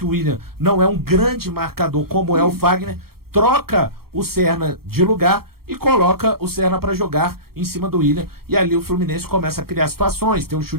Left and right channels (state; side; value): late; left; 0.94 ms